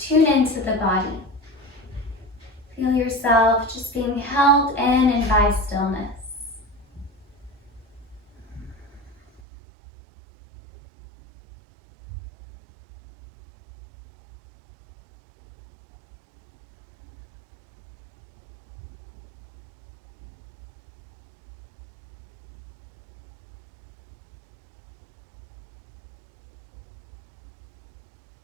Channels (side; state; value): left; drops out; at 9.4 s